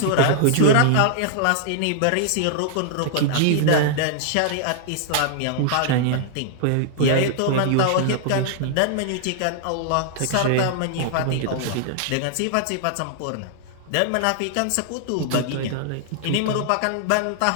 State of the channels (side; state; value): both; different; correlation -0.01